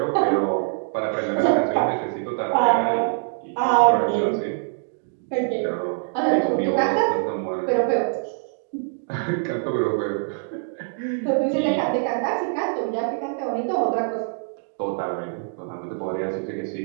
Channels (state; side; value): silent; left; digital silence